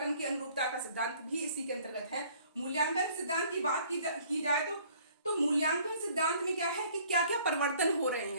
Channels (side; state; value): both; inverted; correlation -0.57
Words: की अनुरूपता का सिद्धांत भी इसी के अंतर्गत है। मूल्यांकन सिद्धांत की बात की जाए तो मूल्यांकन सिद्धांत में क्या है कि क्या क्या परिवर्तन हो रहे